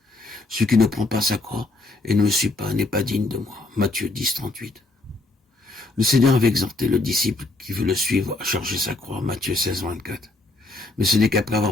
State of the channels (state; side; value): quieter; right; 3.0 dB